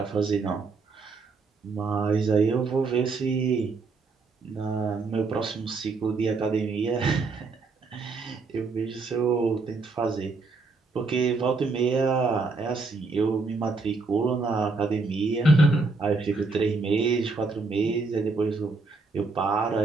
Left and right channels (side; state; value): left; quieter; 4.0 dB